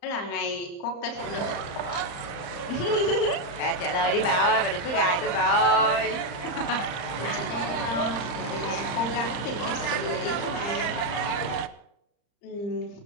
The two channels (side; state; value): right; late; 34 ms